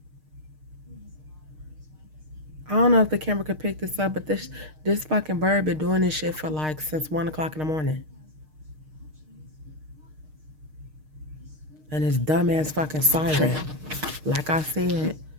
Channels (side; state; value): left; late; 6.5 ms